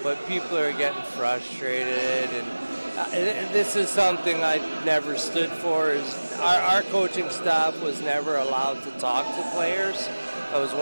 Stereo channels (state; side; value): inverted; both; correlation -1.00